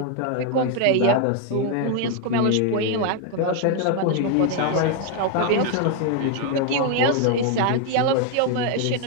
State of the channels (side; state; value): both; different; correlation 0.01